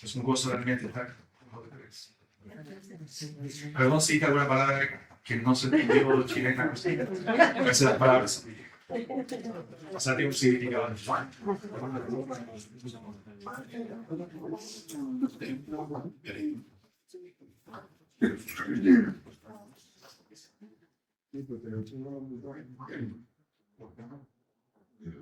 Es un gozo realmente estar con ustedes. Perdón si dije alguna palabra que no se entendió chilena. A veces las palabras pasan un significado.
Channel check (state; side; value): identical; both; correlation 1.00